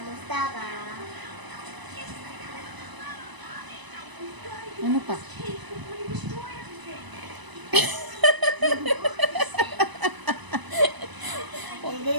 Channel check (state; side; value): late; left; 1.0 ms